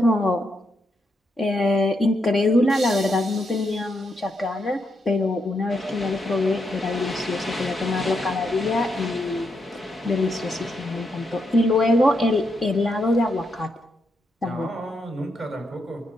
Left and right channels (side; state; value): both; normal; correlation 0.81